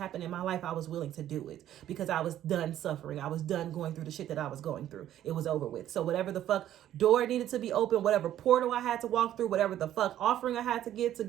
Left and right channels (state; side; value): quieter; left; 12.0 dB